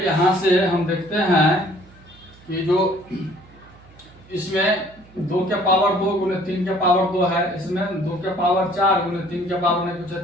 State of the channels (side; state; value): right; noise; hum, 25 dB below the sound